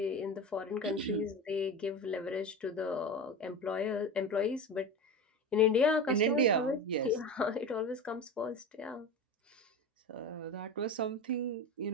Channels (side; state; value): both; normal; correlation 0.26